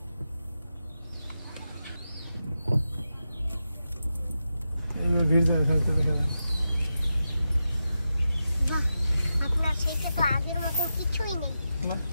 এই ভিড় যায় থাকতে দেখা যায় না। বাহ, আপনার সেইটা তো আগের মতো কিছুই নেই, না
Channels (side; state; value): both; inverted; correlation -0.89